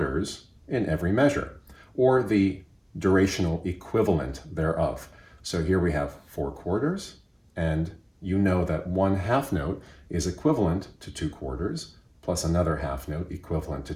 in every measure, or the durational equivalent thereof. So here we have 4 quarters, and you know that 1 half note is equivalent to 2 quarters, plus another half note equivalent to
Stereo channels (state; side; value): identical; both; correlation 1.00